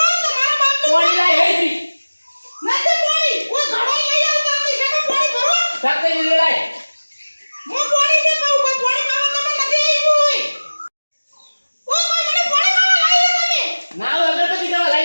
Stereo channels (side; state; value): both; inverted; correlation -1.00